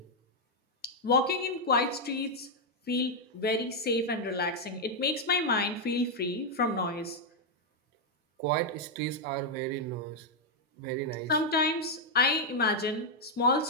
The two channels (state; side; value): normal; both; correlation -0.01